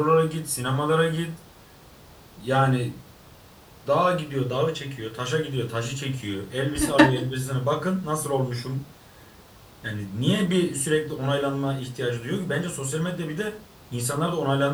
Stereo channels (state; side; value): identical; both; correlation 1.00